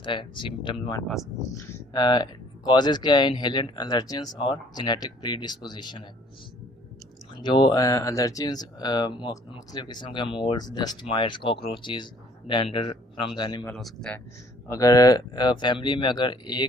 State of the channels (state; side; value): normal; both; correlation 0.58